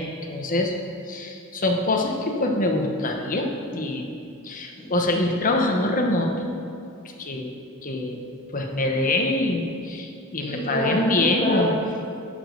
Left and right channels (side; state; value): both; normal; correlation 0.30